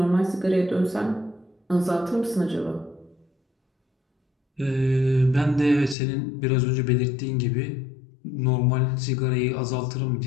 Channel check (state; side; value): drops out; right; at 6.0 s